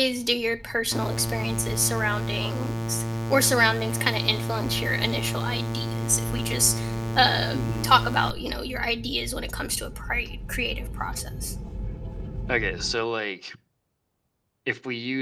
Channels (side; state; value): both; identical; correlation 1.00